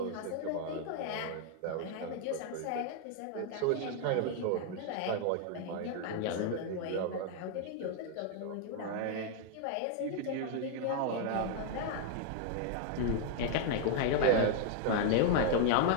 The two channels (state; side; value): different; both; correlation 0.00